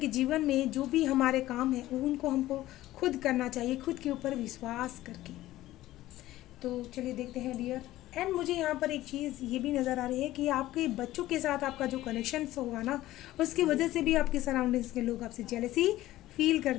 जीवन में जो भी हमारे काम है उनको हमको खुद करना चाहिए, खुद के ऊपर विश्वास करके। तो चलिए देखते हैं डियर। एंड मुझे यहाँ पर एक चीज़ ये भी नज़र आ रही है कि आपके बच्चों के साथ आपका जो कनेक्शन होगा ना, उसकी वजह से भी आपके सराउंडिंग्स के लोग आपसे जेलसी फील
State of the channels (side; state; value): right; quieter; 15.6 dB